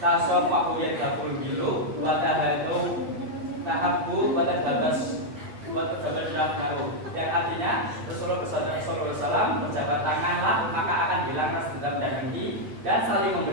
tasofahu yadhabul gilu watahadu tahabbu watadhabas watadhabasyahu, yang artinya Rasulullah SAW berjabat tanganlah maka akan hilang rasa dendam dan dengki, dan saling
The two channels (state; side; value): late; left; 8.7 ms